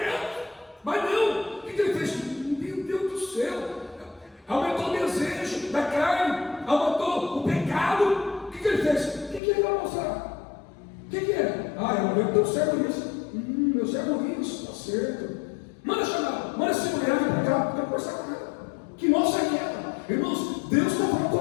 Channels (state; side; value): drops out; right; at 9.4 s